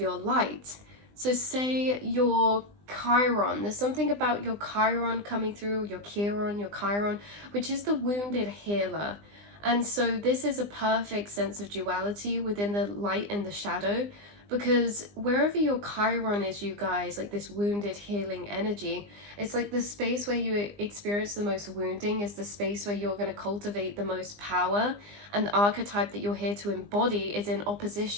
light. So say your Chiron, there's something about your Chiron coming through, your Chiron, which is the wounded healer. And so this is a perfect sense of duality within the light and the shadow, because wherever your Chiron is, you guys, like this wounded healing energy, it's like the space where you experience the most wounding is the space where you're going to cultivate the most power, and the archetype that you're here to embody is in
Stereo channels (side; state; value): left; late; 20 ms